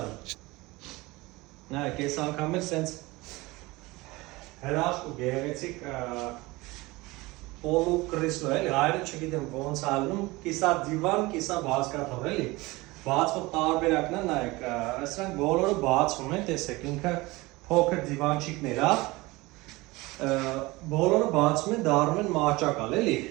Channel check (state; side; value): quieter; left; 21.8 dB